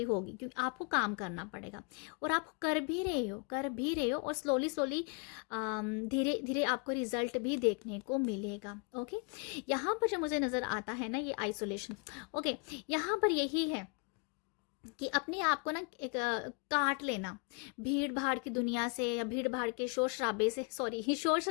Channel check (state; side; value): quieter; right; 34.6 dB